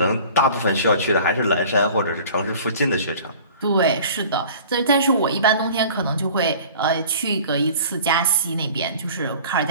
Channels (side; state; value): both; inverted; correlation -0.45